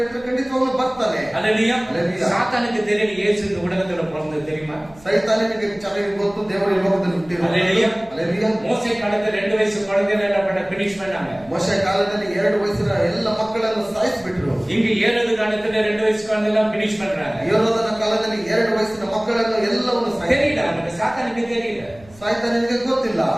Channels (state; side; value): noise; right; hum, 25 dB below the sound